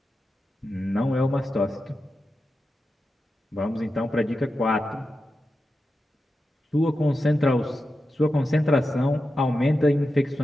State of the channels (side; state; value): both; normal; correlation 0.90